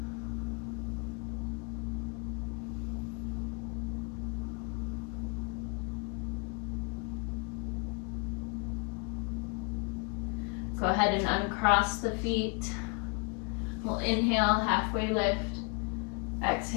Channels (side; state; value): right; quieter; 34.1 dB